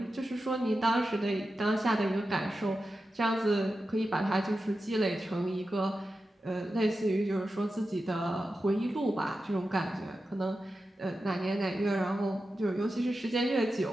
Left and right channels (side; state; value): both; normal; correlation 0.92